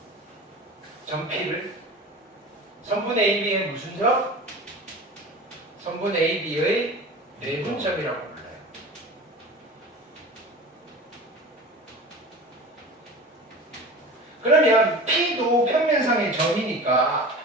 점 P를 선분 AB의 무슨 점? 선분 AB의 내분점이라고 불러요. 그러면 P도 평면상의 점이니까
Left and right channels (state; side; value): normal; both; correlation 0.35